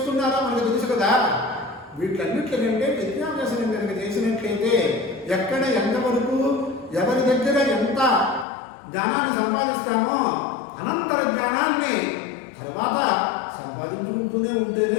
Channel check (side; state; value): right; drops out; at 8.5 s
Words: మనకు తెలుసు కదా. వీటన్నిటికంటే విద్యాభ్యాసం కనుక చేసినట్లయితే ఎక్కడ ఎంతవరకు ఎవరి దగ్గర ఎంత జ్ఞానాన్ని సంపాదిస్తామో అనంతర జ్ఞానాన్ని తర్వాత సంపాదించుకుంటూనే ఉంటేనే